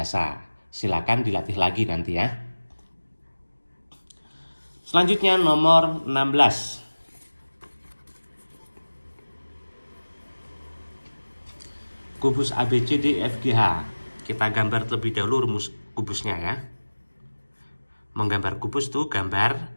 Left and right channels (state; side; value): inverted; both; correlation -1.00